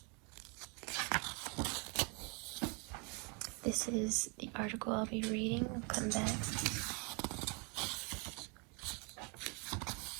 This is the article I'll be reading. I'll come back.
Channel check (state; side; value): quieter; left; 33.0 dB